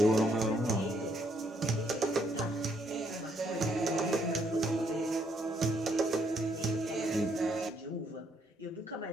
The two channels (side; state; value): both; normal; correlation 0.71